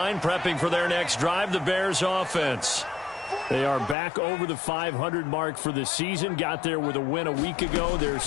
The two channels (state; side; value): drops out; right; at 4.0 s